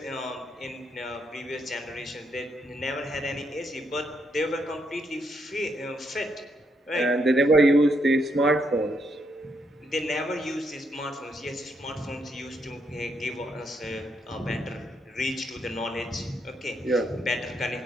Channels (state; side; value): normal; both; correlation 0.77